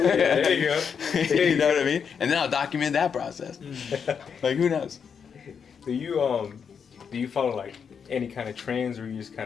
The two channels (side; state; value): right; quieter; 6.8 dB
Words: There you go. You know what I mean? And then I'll document that process. Like who knows? Do you follow like any kind of trends, or you just